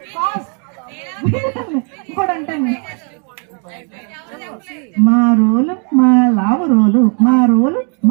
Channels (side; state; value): left; quieter; 39.1 dB